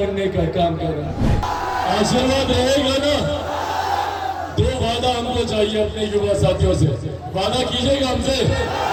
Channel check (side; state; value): both; identical; correlation 1.00